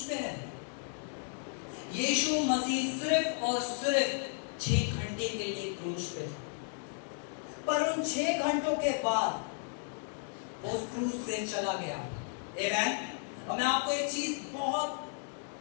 पे है? यीशु मसीह सिर्फ और सिर्फ 6 घंटे के लिए क्रूस पे था, पर उन 6 घंटों के बाद वो उस क्रूस से चला गया। आमीन। और मैं आपको एक चीज बहुत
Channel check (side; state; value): right; silent; 55 dB below the other